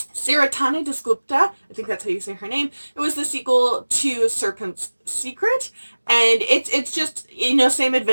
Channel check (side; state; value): both; inverted; correlation -1.00